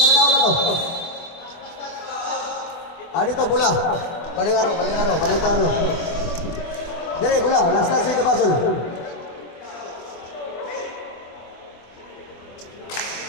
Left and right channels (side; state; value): right; late; 24 ms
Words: na ako na to. Dito bola. Balik aro. Dire bola, last na sa basol.